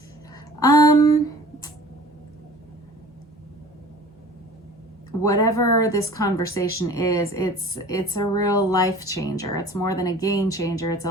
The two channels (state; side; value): normal; both; correlation 0.45